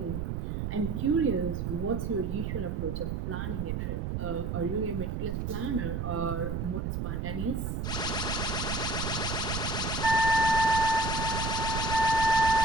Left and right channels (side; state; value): right; noise; rumble, 2 dB below the sound